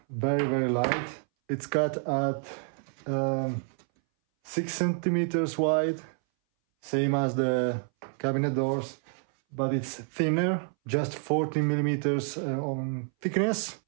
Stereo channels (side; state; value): left; silent; 59 dB below the other